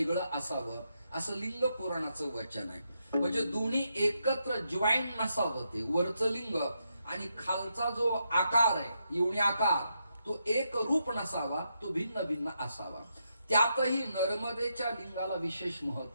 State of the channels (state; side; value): inverted; both; correlation -0.82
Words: असावं असं लिंग पुराणाचं वचन आहे. म्हणजे दोन्ही एकत्र जॉईन नसावं. ते वरचं लिंग आणि खालचा जो आकार आहे योनी आकार तो एक रूप नसावा, तो भिन्न भिन्न असावा. त्यातही नर्मदेच्या लिंगाला विशेष